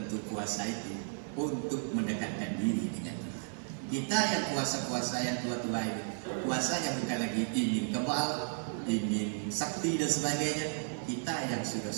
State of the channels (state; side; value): silent; left; digital silence